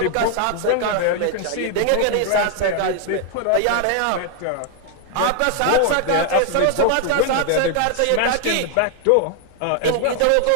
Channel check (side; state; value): both; different; correlation 0.00